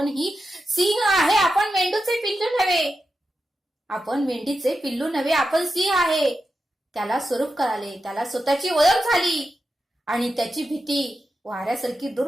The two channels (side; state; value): both; normal; correlation 0.89